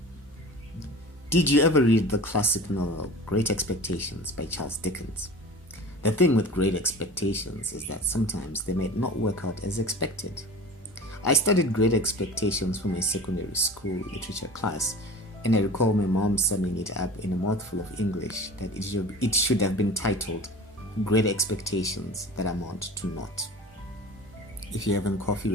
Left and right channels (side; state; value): both; normal; correlation 0.38